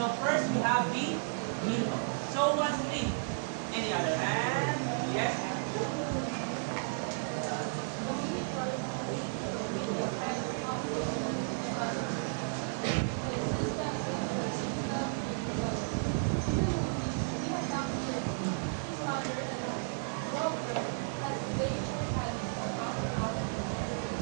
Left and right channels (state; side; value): silent; left; digital silence